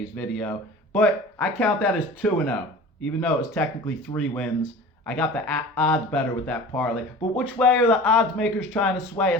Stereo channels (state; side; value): normal; both; correlation 0.39